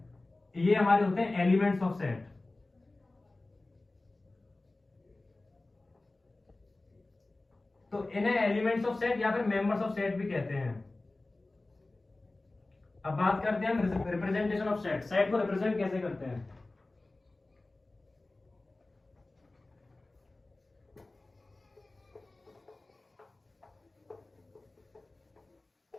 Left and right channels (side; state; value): right; quieter; 3.0 dB